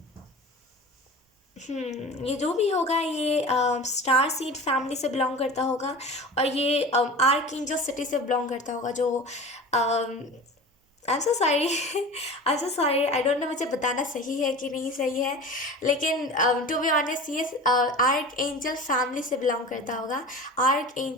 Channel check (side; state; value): both; normal; correlation 0.35